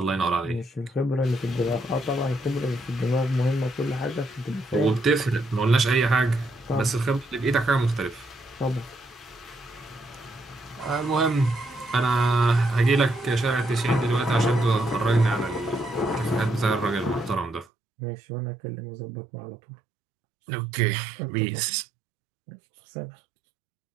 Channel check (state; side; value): drops out; left; at 17.7 s